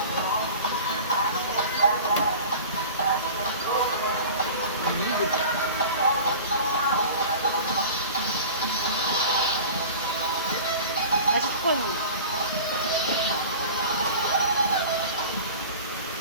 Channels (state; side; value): inverted; both; correlation -0.38